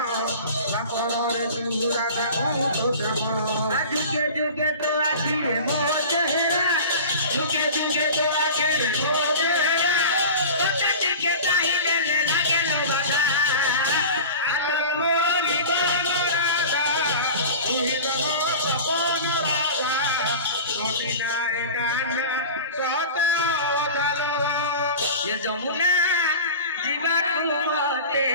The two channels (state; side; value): inverted; both; correlation -0.35